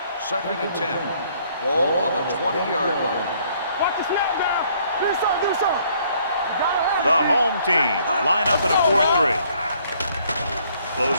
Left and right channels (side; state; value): both; inverted; correlation -0.64